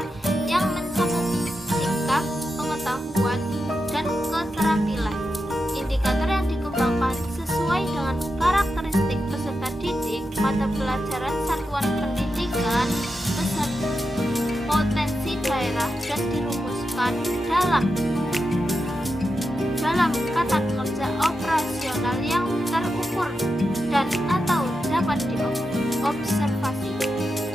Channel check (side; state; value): both; normal; correlation 0.88